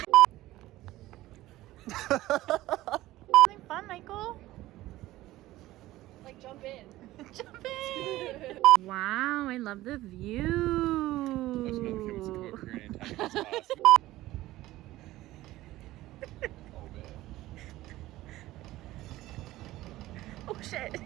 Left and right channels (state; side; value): quieter; left; 16.5 dB